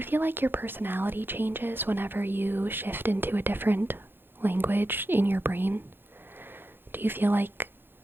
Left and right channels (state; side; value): late; left; 0.10 ms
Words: feel like your personality changes whenever you shift into a different language in your brain? Do you feel like